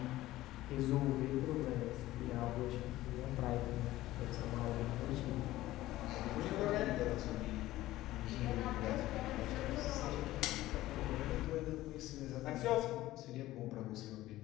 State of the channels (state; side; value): quieter; right; 16.1 dB